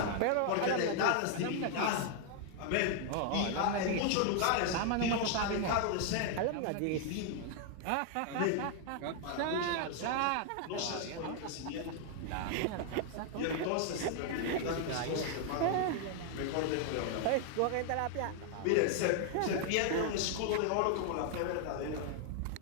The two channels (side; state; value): both; different; correlation 0.00